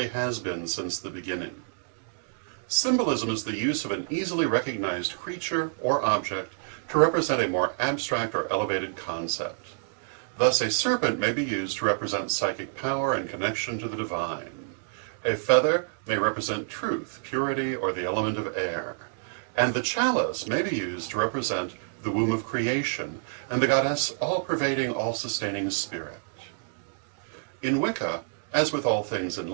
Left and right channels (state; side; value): silent; left; digital silence